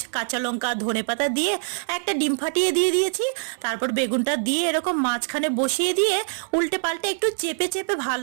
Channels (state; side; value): silent; left; 63 dB below the other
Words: কাঁচা লঙ্কা, ধনেপাতা দিয়ে একটা ডিম ফাটিয়ে দিয়ে দিয়েছি। তারপর বেগুনটা দিয়ে এরকম মাঝখানে বসিয়ে দিয়ে উল্টে পাল্টে একটু চেপে চেপে